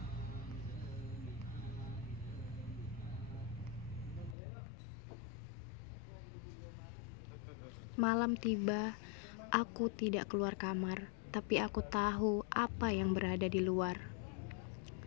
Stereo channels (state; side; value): drops out; right; at 4.4 s